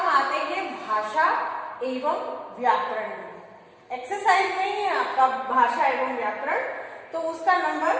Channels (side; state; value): both; identical; correlation 1.00